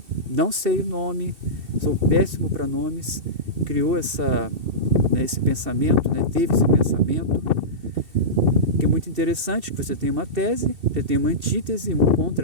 não sei o nome, sou péssimo para nomes, criou esse pensamento, né, teve esse pensamento, que é muito interessante, que você tem uma tese, você tem uma antítese, um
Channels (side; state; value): left; late; 2.7 ms